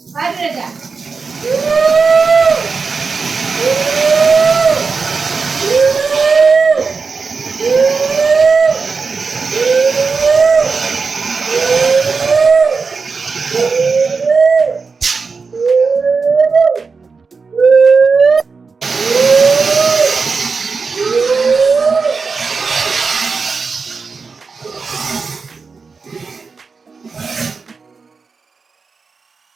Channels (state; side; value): quieter; left; 4.8 dB